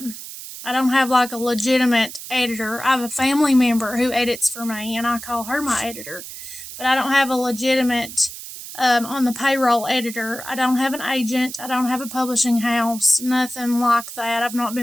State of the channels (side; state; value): right; noise; hiss, 12 dB below the sound